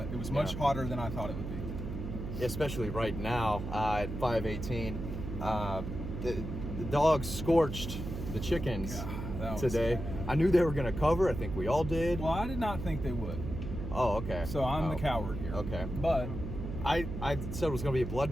It was much hotter than I thought it would be. Especially right now at 5:18. The dogs scorched the chickens today. I knew they were going to cover. I think we all did. Well, I did not think they would. Oh, okay. So I'm the coward here. Okay. But I said it was going to be a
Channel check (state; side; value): noise; right; hum, 6 dB below the sound